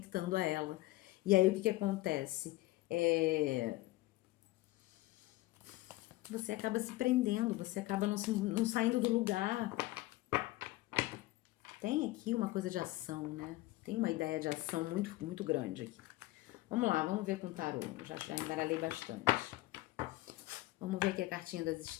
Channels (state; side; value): quieter; right; 18.7 dB